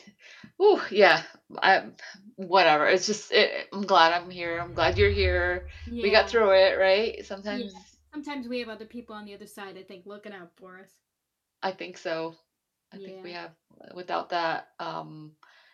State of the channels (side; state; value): both; identical; correlation 1.00